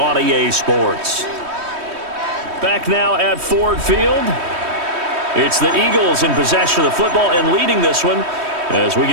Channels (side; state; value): left; late; 3.1 ms